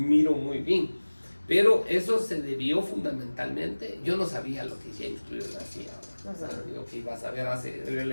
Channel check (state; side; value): inverted; both; correlation -1.00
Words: muy bien. Pero eso se debió fundamentalmente, yo no sabía lo que James Clear hacía, yo que iba a saber de